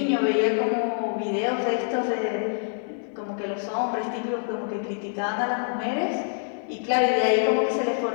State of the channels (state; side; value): silent; right; digital silence